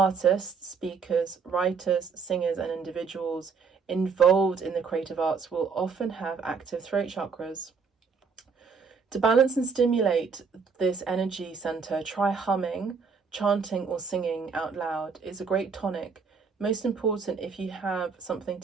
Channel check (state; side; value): quieter; left; 5.4 dB